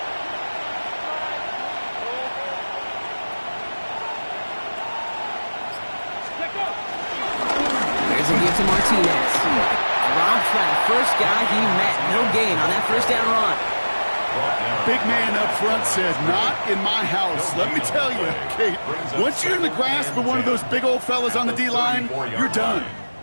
Here's a give to Martinez. Drops by the first guy he met. No gain on that first down run. Big man up front said, not in my house. Let me tell you, Kate, once you're in the grasp of one of those big old fellas on the D-line, you're done.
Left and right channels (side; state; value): both; inverted; correlation -1.00